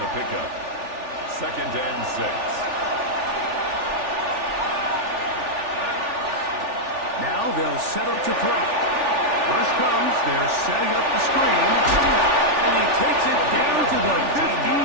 the pickup. 2nd and 6. Now He'll set up to throw. Rush comes. They're setting up the screen. And he takes it down to the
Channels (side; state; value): left; late; 3.4 ms